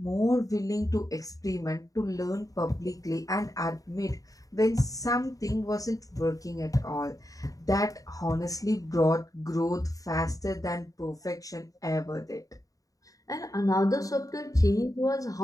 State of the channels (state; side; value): late; right; 0.17 ms